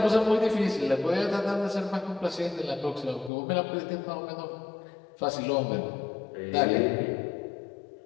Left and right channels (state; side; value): drops out; right; at 3.3 s